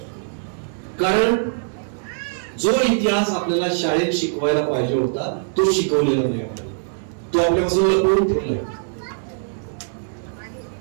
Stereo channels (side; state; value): left; silent; digital silence